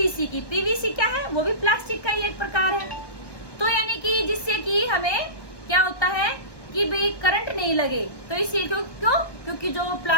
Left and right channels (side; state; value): right; late; 1.2 ms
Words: की। पीवीसी क्या है? वो भी प्लास्टिक का ही एक प्रकार है। तो यानी कि जिससे कि हमें क्या होता है कि भाई करंट नहीं लगे, तो इसलिए क्यों? क्योंकि जो